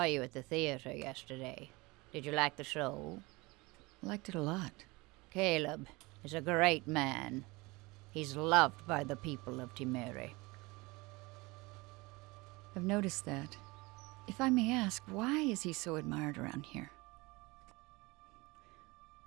you at the theater yesterday. Did you like the show? Liked it a lot. Caleb is a great man. He's loved by the people of Timere. I've noticed that. If I may ask, why is he so admired around here?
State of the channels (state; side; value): quieter; left; 23.8 dB